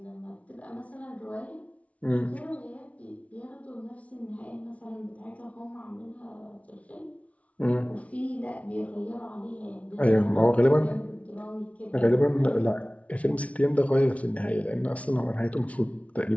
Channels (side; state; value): right; late; 0.065 ms